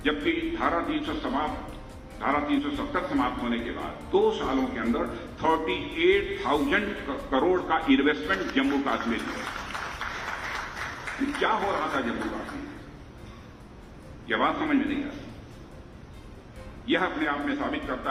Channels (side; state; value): both; identical; correlation 1.00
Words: जबकि धारा 370 समाप्त होने के बाद 2 सालों के अंदर 38,000 करोड़ का इन्वेस्टमेंट जम्मू कश्मीर में। क्या हो रहा था जम्मू कश्मीर, यह बात समझ में नहीं आती। यह अपने आप में साबित